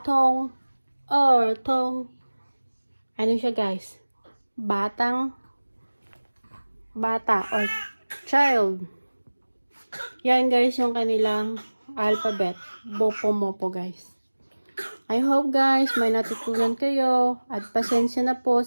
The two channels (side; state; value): both; inverted; correlation -1.00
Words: 童, ano siya guys? Bata or child. Yan guys yung kanilang alphabet. Bopo-mopo guys. I hope guys may natutunan kayo at pasensya na po